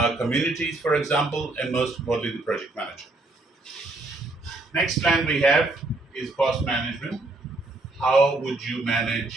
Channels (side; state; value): left; quieter; 3.0 dB